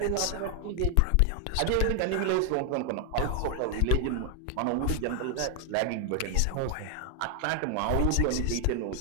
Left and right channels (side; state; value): both; different; correlation 0.00